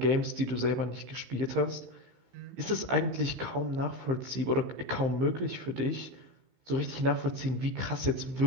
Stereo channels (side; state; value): left; late; 15 ms